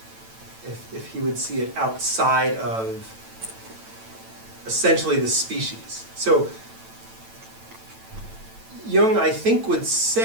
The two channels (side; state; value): left; late; 9.0 ms